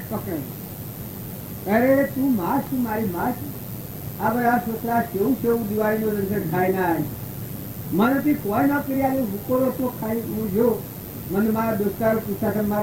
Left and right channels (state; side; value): identical; both; correlation 1.00